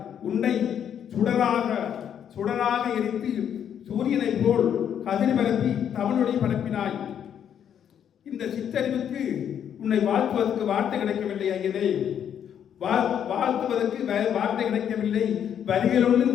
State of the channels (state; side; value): quieter; right; 9.0 dB